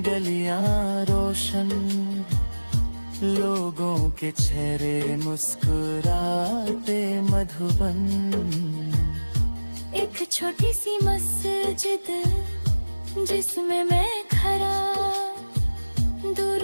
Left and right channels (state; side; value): inverted; both; correlation -1.00